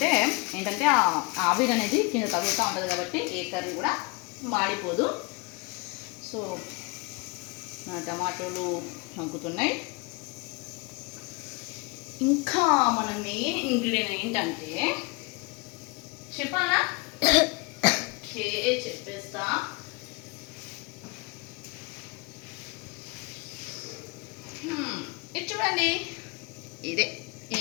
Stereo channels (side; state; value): right; quieter; 28.8 dB